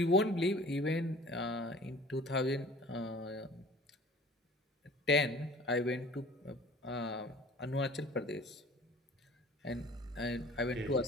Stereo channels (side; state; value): both; normal; correlation 0.47